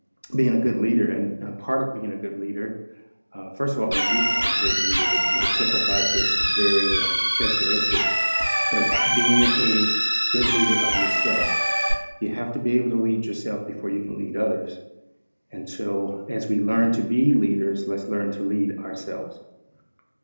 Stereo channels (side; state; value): both; inverted; correlation -1.00